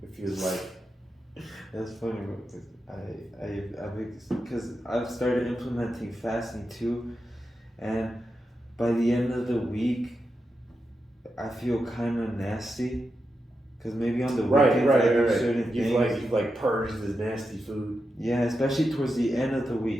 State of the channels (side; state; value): both; normal; correlation 0.88